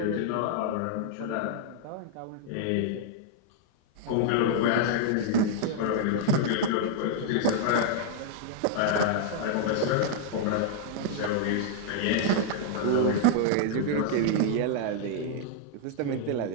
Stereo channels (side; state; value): both; different; correlation -0.01